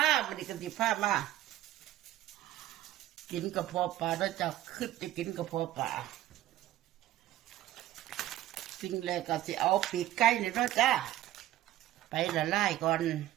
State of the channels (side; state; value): left; quieter; 13.8 dB